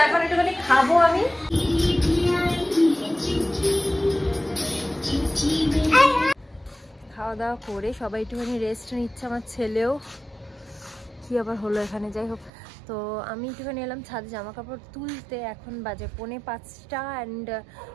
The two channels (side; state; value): left; drops out; at 12.5 s